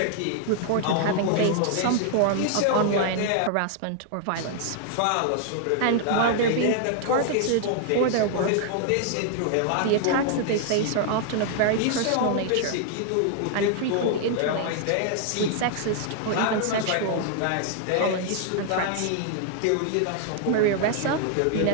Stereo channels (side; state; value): both; different; correlation 0.00